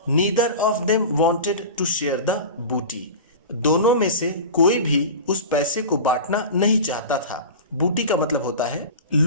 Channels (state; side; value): inverted; both; correlation -0.31